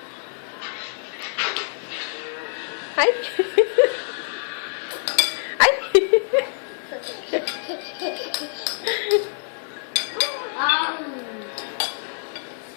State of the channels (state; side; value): silent; right; 59 dB below the other